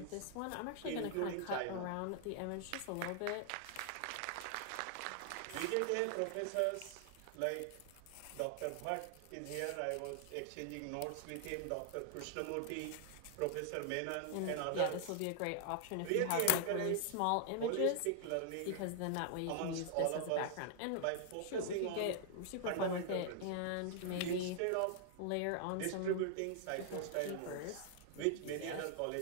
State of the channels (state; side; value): different; both; correlation 0.00